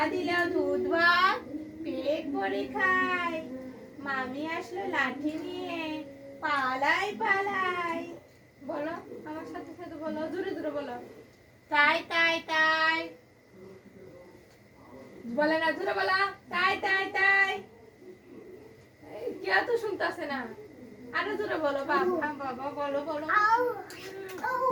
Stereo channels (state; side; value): identical; both; correlation 1.00